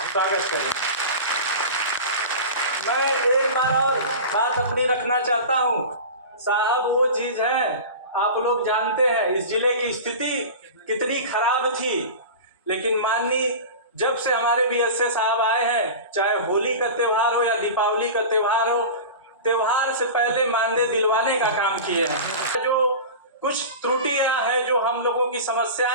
स्वागत करें। मैं एक बार और बात अपनी रखना चाहता हूँ साहब, वो चीज है आप लोग जानते हैं इस जिले की स्थिति कितनी खराब थी, लेकिन माननीय जब से हमारे BSA साहब आए हैं, चाहे होली का त्यौहार हो या दीपावली का त्यौहार हो, त्यौहार से पहले मानदेय दिलवाने का काम किए हैं। जो कुछ त्रुटियां हैं, जो हम लोगों की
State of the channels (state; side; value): inverted; both; correlation -0.31